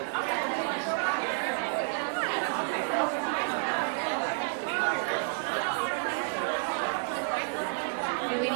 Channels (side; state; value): left; silent; digital silence